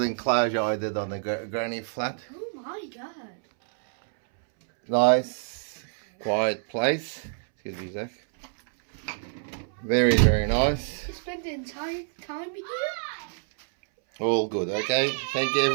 enclosure I did on the granny flat. Oh my god. Nice, quiet place. Excuse me, Zach. Very, very nice. You spent the entire time here? All good, okay? Thank you,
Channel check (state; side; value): silent; left; 60 dB below the other